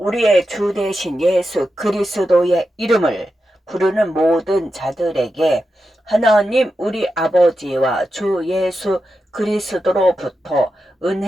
주 되신 예수 그리스도의 이름을 부르는 모든 자들에게 하나님 우리 아버지와 주 예수 그리스도로부터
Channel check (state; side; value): normal; both; correlation 0.89